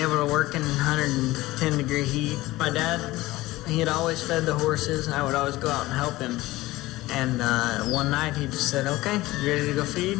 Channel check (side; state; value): right; quieter; 18.4 dB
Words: to work in 110-degree heat. My dad, he had always fed the horses, and I would always go out and help him. And one night he just said, "Okay, you ready to go feed?"